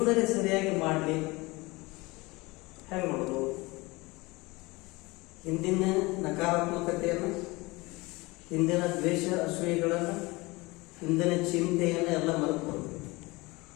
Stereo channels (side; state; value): right; quieter; 23.3 dB